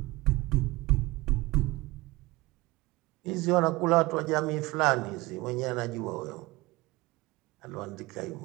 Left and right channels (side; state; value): left; quieter; 21.6 dB